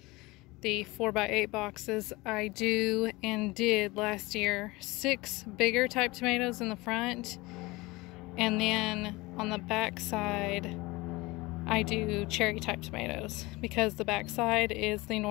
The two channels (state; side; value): quieter; right; 22.2 dB